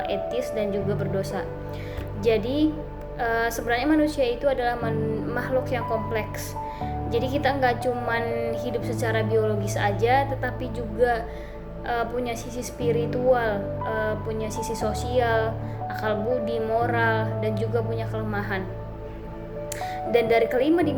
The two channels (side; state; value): both; identical; correlation 1.00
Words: etis, dan juga berdosa. Jadi sebenarnya manusia itu adalah makhluk yang kompleks. Jadi kita nggak cuman hidup secara biologis aja, tetapi juga punya sisi spiritual, punya sisi sosial, akal budi, moral, dan juga punya kelemahan. Dan dari kelima